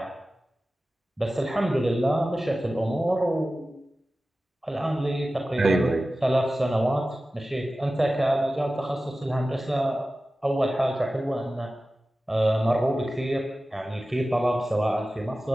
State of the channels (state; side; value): normal; both; correlation 0.95